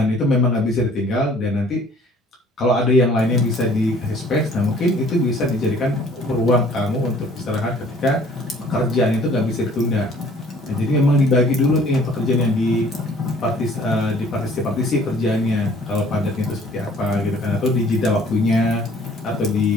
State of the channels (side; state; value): both; normal; correlation 0.55